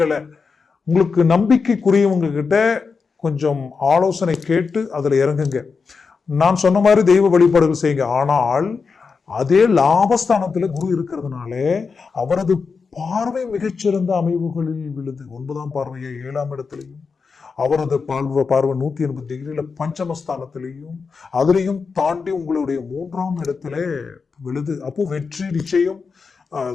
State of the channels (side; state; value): right; quieter; 5.1 dB